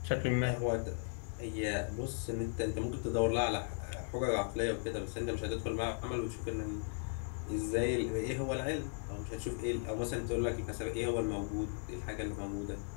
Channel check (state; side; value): silent; right; 53 dB below the other